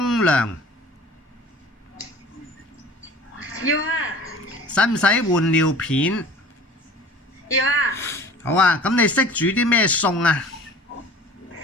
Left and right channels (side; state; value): both; normal; correlation 0.44